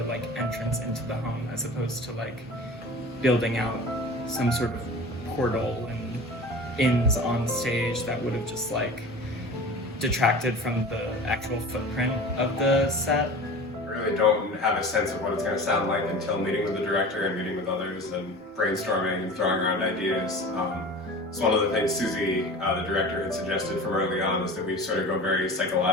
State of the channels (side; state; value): both; normal; correlation 0.37